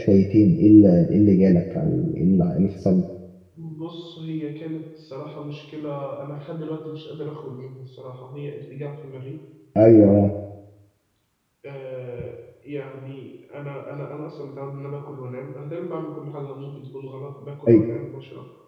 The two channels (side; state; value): both; identical; correlation 1.00